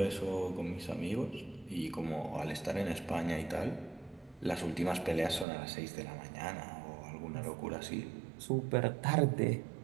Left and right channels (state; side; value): drops out; left; at 5.5 s